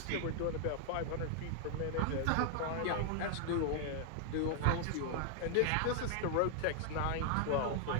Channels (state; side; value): different; both; correlation 0.00